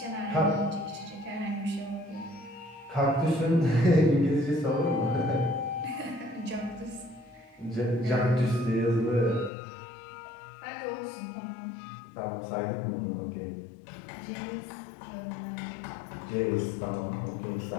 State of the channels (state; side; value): drops out; right; at 9.5 s